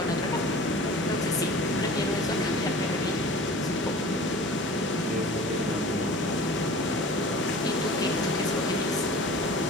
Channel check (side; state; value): both; normal; correlation 0.41